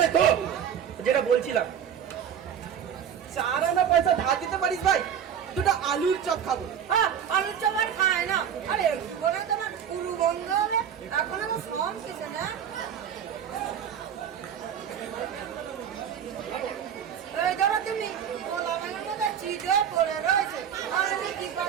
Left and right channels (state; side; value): quieter; left; 8.6 dB